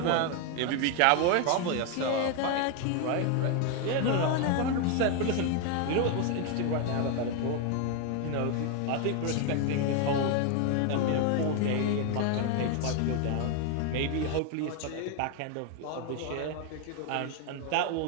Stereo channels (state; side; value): different; both; correlation 0.01